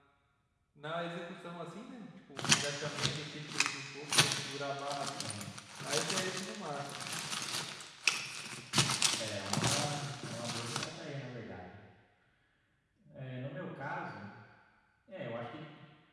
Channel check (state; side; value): identical; both; correlation 1.00